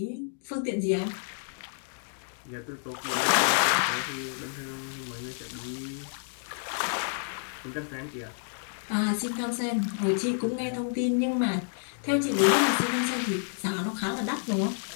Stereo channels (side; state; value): right; silent; digital silence